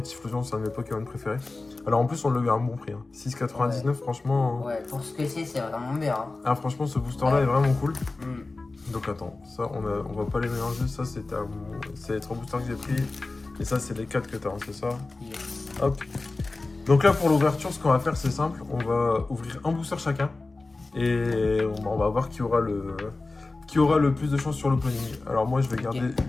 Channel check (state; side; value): quieter; right; 3.4 dB